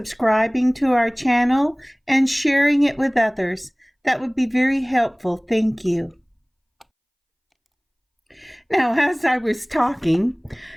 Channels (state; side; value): identical; both; correlation 1.00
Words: to our channel and sharing it with others. That would be very helpful. Thank you. Now, as I was talking,